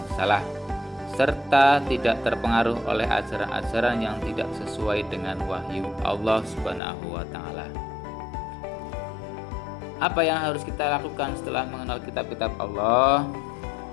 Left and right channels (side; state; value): right; drops out; at 6.8 s